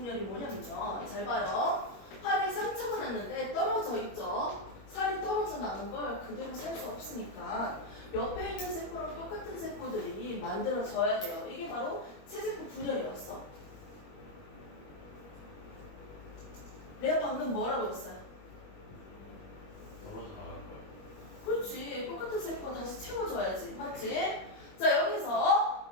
뭐냐면요. 잘 봐요. 팔에 상처가 났는데 떨어져 있죠. 살이 떨어져 나는 걸 그대로 살 수 없으니까 옆에 있는 세포랑 똑같은 세포들이 만들어져야 돼요. 이게 바로 체세포 분열이었어. 내가 방금 뭐라고 했어요? 떨어져 나갈 거예요. 그렇지. 똑같은 세포가 다시 채워줘야지. 맞지? 자,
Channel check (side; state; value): right; late; 21 ms